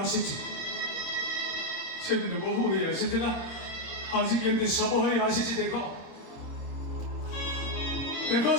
ଆସିଛି ସେଦିନ ବୋହୂ ହେଇ ଆସିଥିଲା ଆଜି କେମିତି ଶବ ହୋଇ ଆସିଛି ଦେଖ ଦେଖ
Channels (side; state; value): right; late; 26 ms